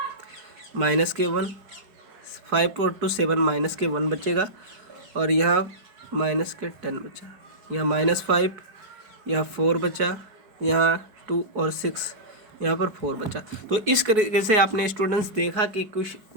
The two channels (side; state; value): left; late; 4.7 ms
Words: माइनस के 1, 5 और 2 7, माइनस के 1 बचेगा, और यहाँ माइनस के 10 बचा, यहाँ -5, यहाँ 4 बचा, यहाँ 2 और 6, यहाँ पर 4 बचा। तो इस तरीके से आपने स्टूडेंट्स देखा कि